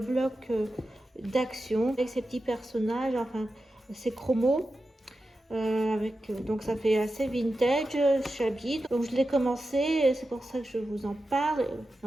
d'action, avec ces petits personnages, enfin ces chromos. Donc ça fait assez vintage, shabby. Donc je l'ai commencé, c'est pour ça que je vous en parle.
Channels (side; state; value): both; normal; correlation 0.91